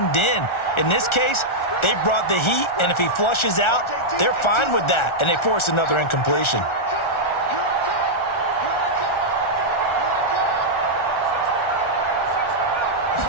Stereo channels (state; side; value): late; right; 1.4 ms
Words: in. In this case, they brought the heat, and if he flushes out, they're fine with that, and they force another incompletion.